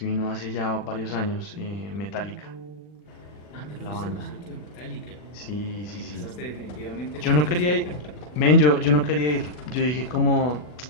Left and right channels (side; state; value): right; late; 40 ms